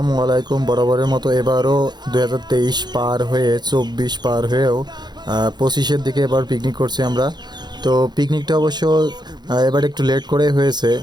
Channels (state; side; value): late; left; 0.21 ms